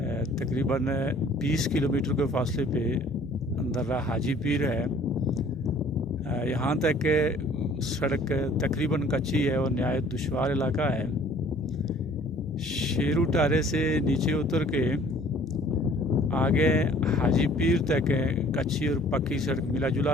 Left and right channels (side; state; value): both; normal; correlation 0.54